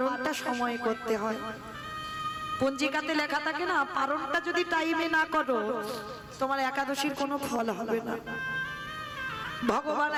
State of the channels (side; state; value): both; identical; correlation 1.00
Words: সময় করতে হয়। পঞ্জিকাতে লেখা থাকে না, পারণটা যদি টাইমে না করো তোমার একাদশীর কোনো ফল হবে না। ভগবান